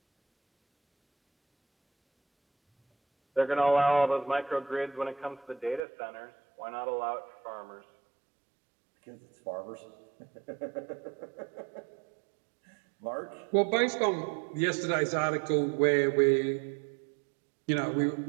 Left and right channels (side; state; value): left; drops out; at 5.8 s